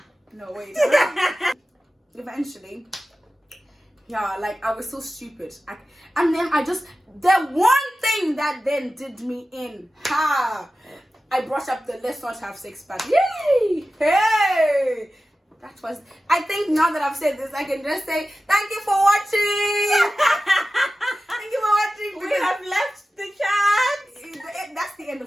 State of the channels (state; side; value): normal; both; correlation 0.94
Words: No, wait. Eventually. Yeah, like I was so stupid. And then the one thing that then did me in. I brought up the let's not have sex, but yay! Hey! That was, I think now that I've said this, I can just say, thank you for watching! Thank you for watching! We have left the chat! That's the end